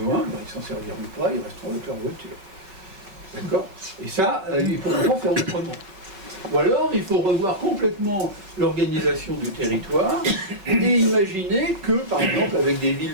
ben, ils s'en serviront pas, ils resteront avec leur voiture. D'accord? Et ça, il faut pas faire autrement. Ou alors, il faut revoir complètement l'organisation du territoire et imaginer que, par exemple, avec des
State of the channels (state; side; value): late; left; 5.3 ms